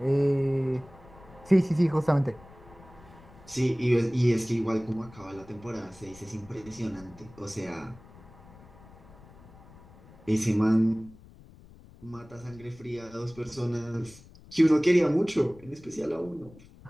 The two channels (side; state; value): left; noise; rumble, 22 dB below the sound